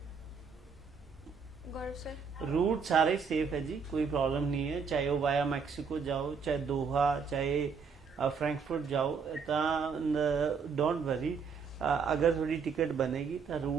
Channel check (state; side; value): quieter; left; 5.7 dB